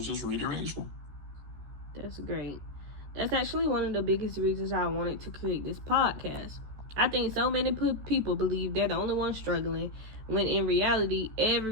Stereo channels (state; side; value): late; left; 14 ms